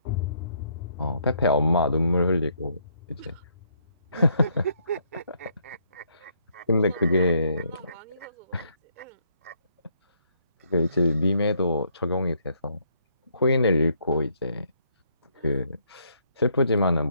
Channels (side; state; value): both; inverted; correlation -0.71